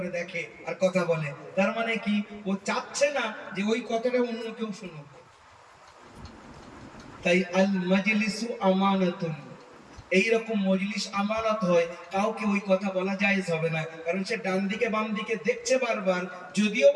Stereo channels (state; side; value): identical; both; correlation 1.00